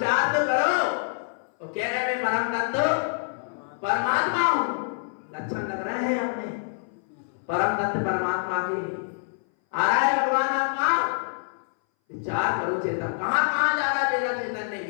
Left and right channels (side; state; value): right; silent; 59 dB below the other